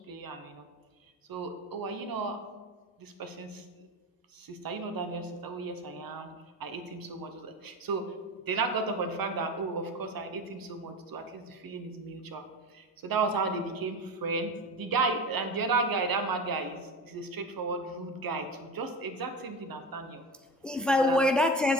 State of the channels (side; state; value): both; normal; correlation 0.27